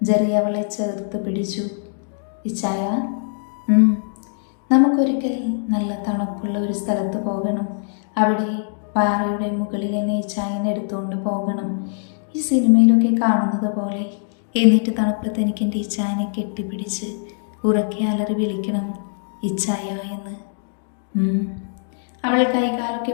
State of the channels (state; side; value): silent; right; digital silence